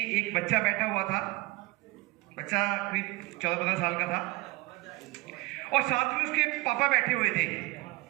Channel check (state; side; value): quieter; left; 22.4 dB